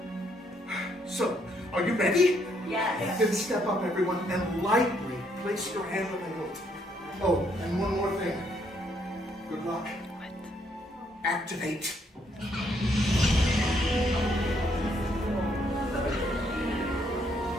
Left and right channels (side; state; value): both; normal; correlation 0.71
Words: So, are you ready? Yes. Then step up, everyone, and lightly place your hand on the hilt. Oh, and one more thing. Good luck. Activate.